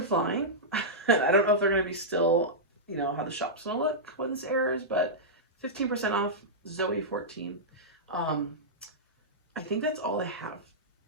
I don't know if they're going to be still, you know, how the shop's going to look when this airs, but 15% off, Zoe 14. I think that's all I have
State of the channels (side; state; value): both; normal; correlation -0.11